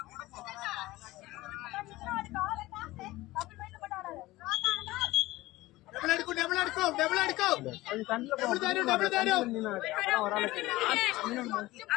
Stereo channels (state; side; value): quieter; right; 18.6 dB